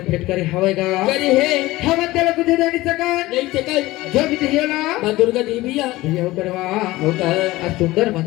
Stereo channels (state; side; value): quieter; right; 18.5 dB